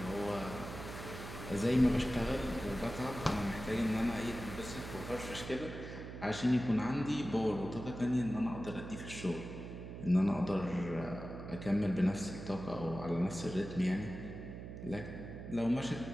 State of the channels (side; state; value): right; noise; hum, 10 dB below the sound